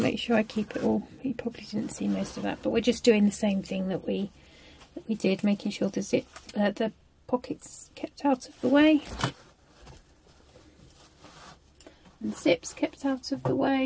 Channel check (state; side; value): identical; both; correlation 1.00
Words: sure I keep it all. You probably didn't see most of that, but we're just doing the same thing that we did, making sure the zip, the pockets kept out of the way, and zips kept out of the